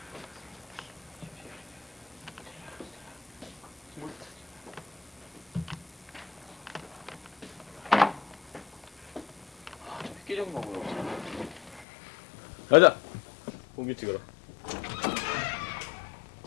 획기적인 거고요. 가자. 공기 찍어라.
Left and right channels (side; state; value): right; drops out; at 11.9 s